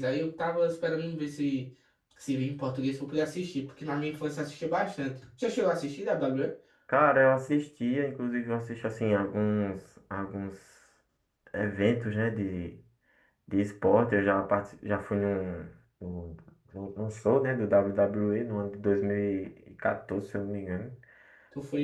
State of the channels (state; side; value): identical; both; correlation 1.00